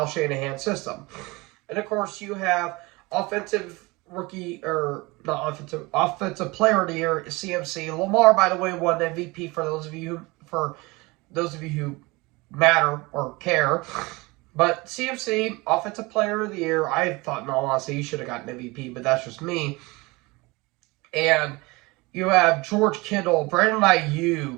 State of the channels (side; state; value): left; quieter; 23.8 dB